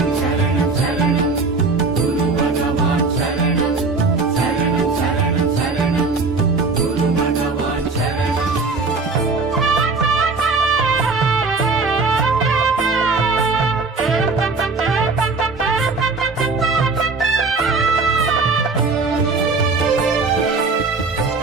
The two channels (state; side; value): quieter; left; 4.0 dB